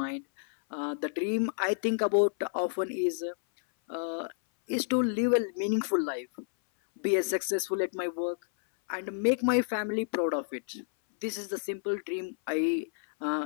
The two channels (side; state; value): right; silent; 58 dB below the other